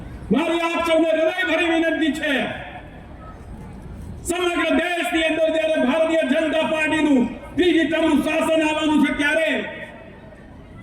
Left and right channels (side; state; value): both; identical; correlation 1.00